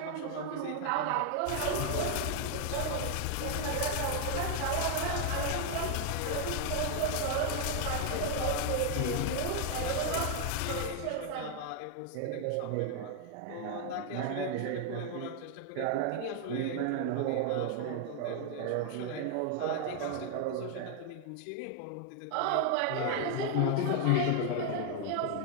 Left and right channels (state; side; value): different; both; correlation 0.00